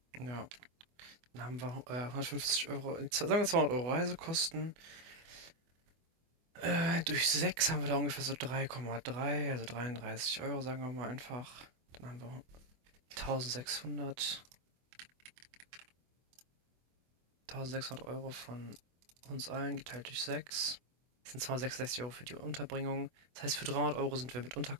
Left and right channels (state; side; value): late; left; 24 ms